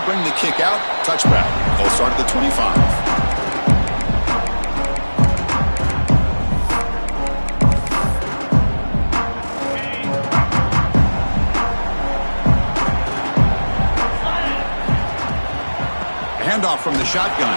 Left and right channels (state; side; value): inverted; both; correlation -1.00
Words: bring the kick out. Touchback. They'll start at the 25. Handoff from the